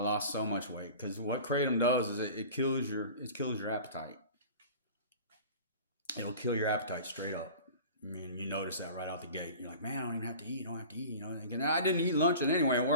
lost so much weight. Because what Kratom does is it kills your appetite. It'll kill your appetite straight up. You notice that right out the gate. You're like, man, I don't even have to eat. I don't have to eat. And I didn't eat lunch anyway at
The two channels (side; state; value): both; inverted; correlation -0.40